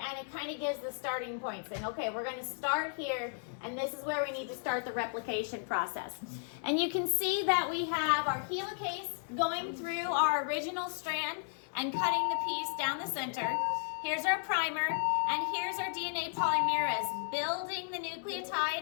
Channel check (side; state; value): right; silent; 55 dB below the other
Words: it kind of gives the starting point, saying, okay, we're going to start here, and this is where we need to start the replication process. And you can see that we have our helicase going through our original strand and cutting the piece down the center. Here's our primer, and here's our DNA polymerase building the